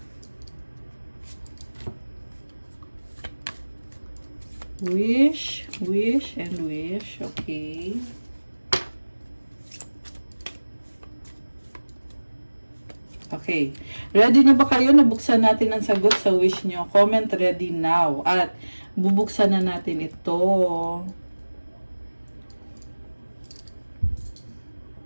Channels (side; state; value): both; inverted; correlation -1.00